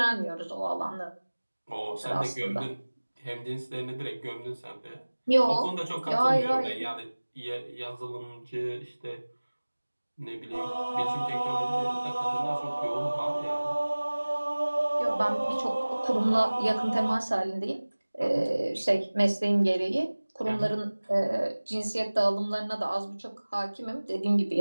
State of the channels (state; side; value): inverted; both; correlation -1.00